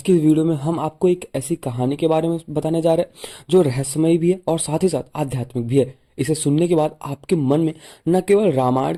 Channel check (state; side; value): identical; both; correlation 1.00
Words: की वीडियो में हम आपको एक ऐसी कहानी के बारे में बताने जा रहे हैं जो रहस्यमयी भी है और साथ ही साथ आध्यात्मिक भी है। इसे सुनने के बाद आपके मन में न केवल रामायण